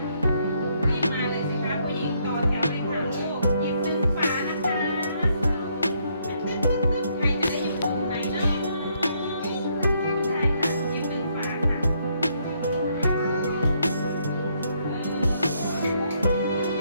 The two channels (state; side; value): inverted; both; correlation -0.73